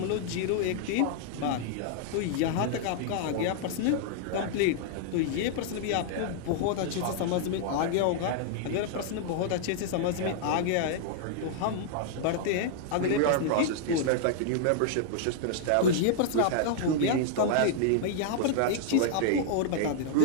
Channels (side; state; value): both; different; correlation -0.01